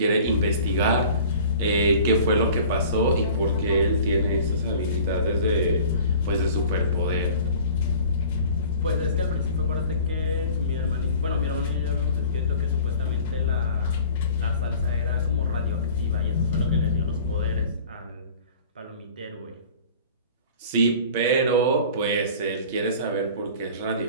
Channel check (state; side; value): inverted; both; correlation -0.45